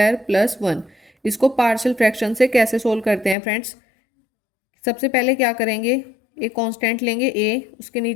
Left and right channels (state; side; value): drops out; right; at 3.4 s